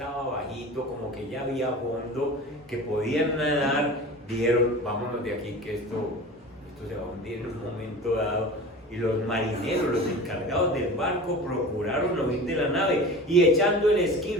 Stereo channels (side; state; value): both; normal; correlation 0.36